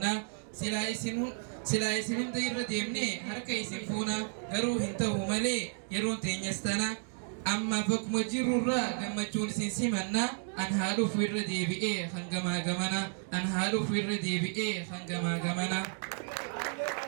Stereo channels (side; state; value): left; silent; 56 dB below the other